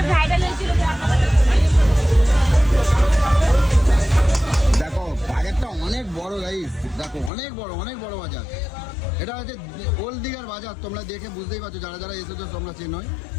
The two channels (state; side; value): drops out; right; at 7.3 s